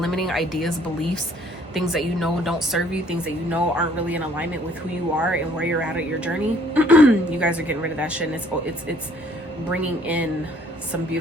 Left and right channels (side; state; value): both; normal; correlation 0.60